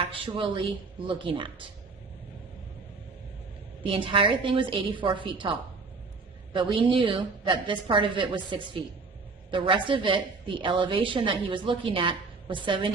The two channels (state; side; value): quieter; left; 4.2 dB